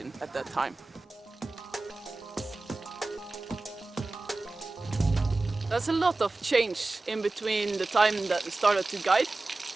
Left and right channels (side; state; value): left; quieter; 3.2 dB